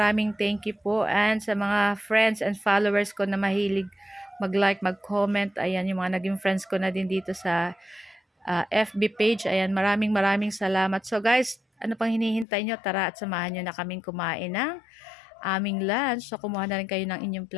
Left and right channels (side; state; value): right; drops out; at 12.5 s